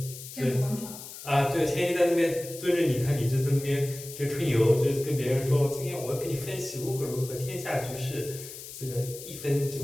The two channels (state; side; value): noise; left; hiss, 12 dB below the sound